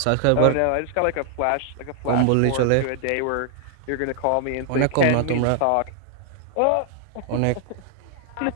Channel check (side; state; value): both; different; correlation 0.00